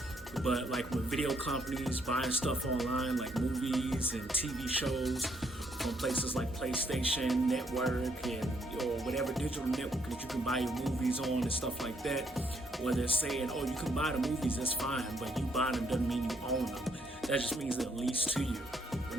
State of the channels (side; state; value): both; normal; correlation 0.71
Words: but like when video companies buying stuff online, like movies and TV shows from places like PlayStation Network and or whatever digital network that you can buy your movies on and stuff like that, where they're saying, oh, you can buy the movies, that's fine, but you buying them doesn't mean you own them. That just means they're leased to you. But